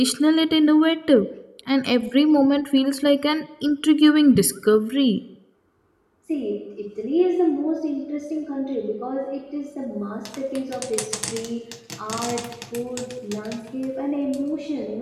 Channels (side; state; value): both; identical; correlation 1.00